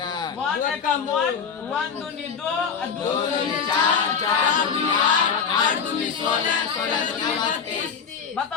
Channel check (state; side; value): quieter; right; 6.4 dB